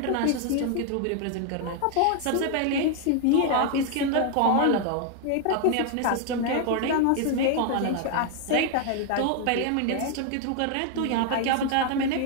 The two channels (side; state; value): both; different; correlation 0.00